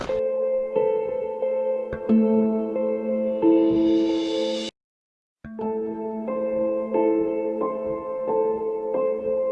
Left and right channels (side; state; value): both; identical; correlation 1.00